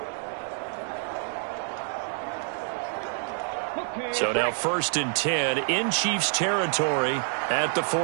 So now 1st and 10 in Chiefs territory at the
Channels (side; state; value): left; silent; 60 dB below the other